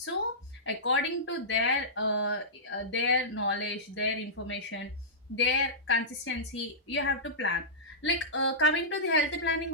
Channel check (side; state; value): both; normal; correlation -0.17